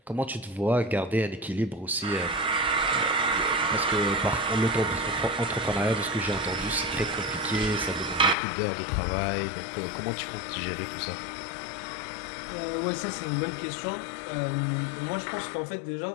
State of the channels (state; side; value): drops out; right; at 8.3 s